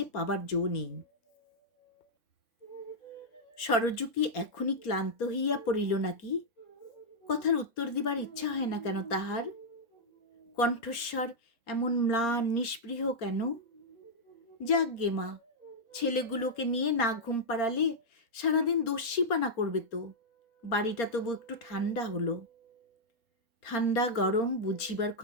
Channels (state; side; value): late; right; 4.3 ms